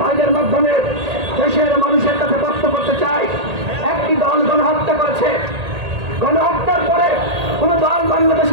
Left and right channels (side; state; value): left; late; 1.8 ms